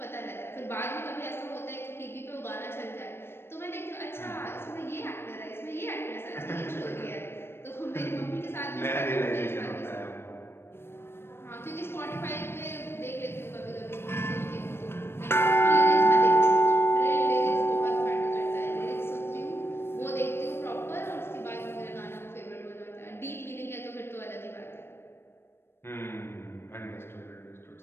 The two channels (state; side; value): late; right; 0.12 ms